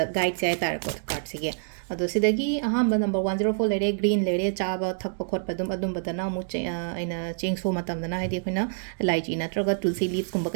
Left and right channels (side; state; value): left; silent; digital silence